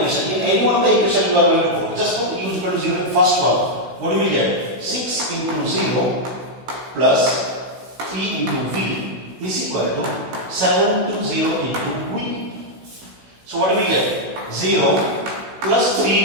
In any one of the equation you are going to put. Just put u is equal to 0 in first one. What do we get? 6 into 0 plus 3 into v is equal to 7 to 0 into v. So what do we get? 0 plus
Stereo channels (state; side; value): late; left; 16 ms